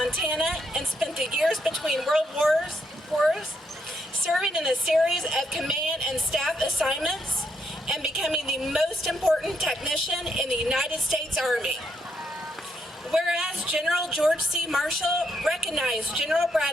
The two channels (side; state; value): both; normal; correlation 0.77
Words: and spent the years between world wars serving in a series of command and staff assignments and becoming the most important technician in the United States Army. Whereas General George C. Marshall recognized General